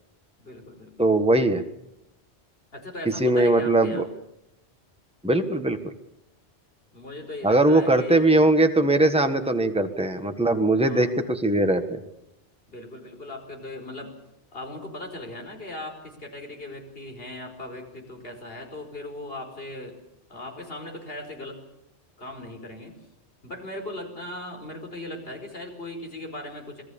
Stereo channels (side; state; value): both; normal; correlation 0.49